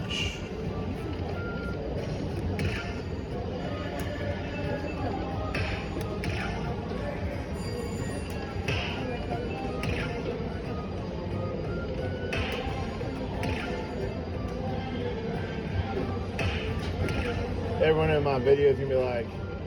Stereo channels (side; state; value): both; identical; correlation 1.00